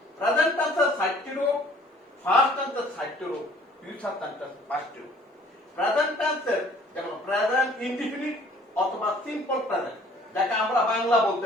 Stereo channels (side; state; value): both; normal; correlation 0.55